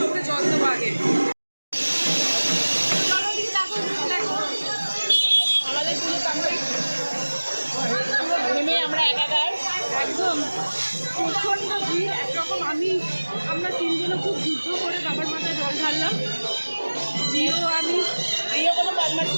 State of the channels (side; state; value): both; inverted; correlation -1.00